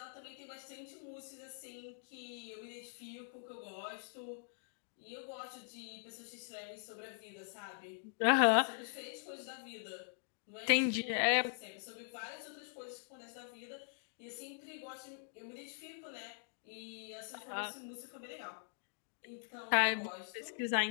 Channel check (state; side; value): silent; right; digital silence